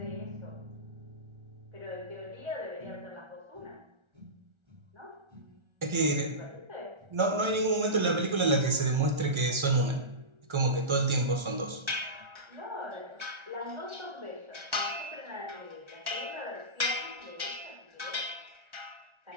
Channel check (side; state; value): left; late; 1.4 ms